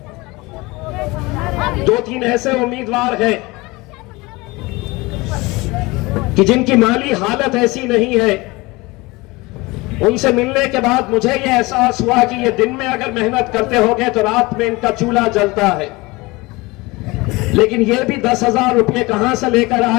2-3 ऐसे उम्मीदवार हैं कि जिनकी माली हालत ऐसी नहीं है। उनसे मिलने के बाद मुझे यह एहसास हुआ कि ये दिन में अगर मेहनत करते होंगे तो रात में इनका चूल्हा जलता है। लेकिन ये भी 10,000 रुपये कहां से लेकर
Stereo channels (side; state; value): right; quieter; 23.0 dB